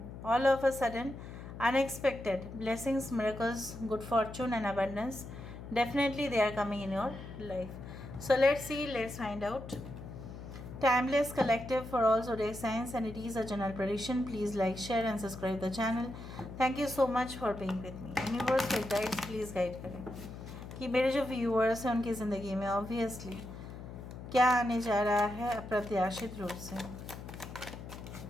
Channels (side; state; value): left; noise; hum, 11 dB below the sound